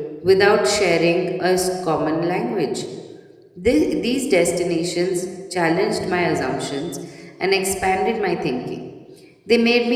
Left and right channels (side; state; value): both; identical; correlation 1.00